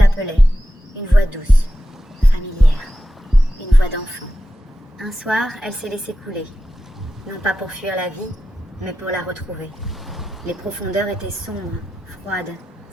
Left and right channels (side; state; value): both; normal; correlation 0.91